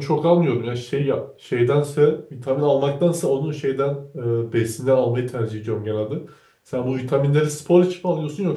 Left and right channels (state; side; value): identical; both; correlation 1.00